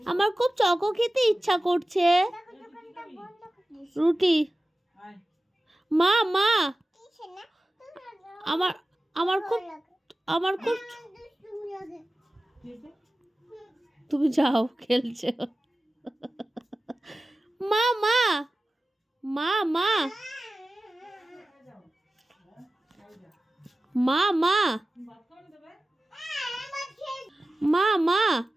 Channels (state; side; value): normal; both; correlation 0.95